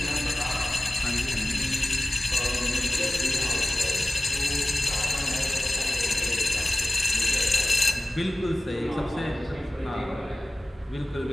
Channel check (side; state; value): both; normal; correlation 0.96